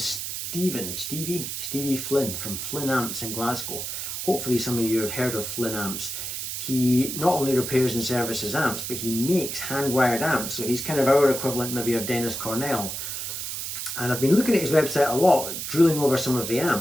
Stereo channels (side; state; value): right; noise; hiss, 5 dB below the sound